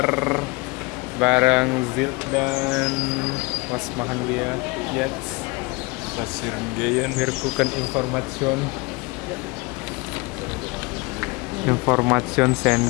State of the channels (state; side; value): quieter; right; 25.5 dB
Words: bareng Zil dan Was Mahanlia. Yes, Pasirgeyen Mirkukan Information